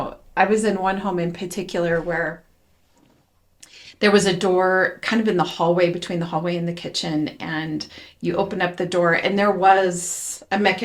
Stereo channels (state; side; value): identical; both; correlation 1.00